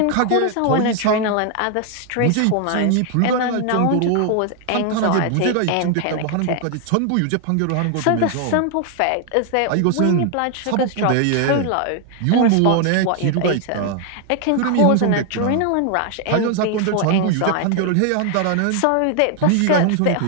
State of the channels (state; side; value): different; both; correlation 0.00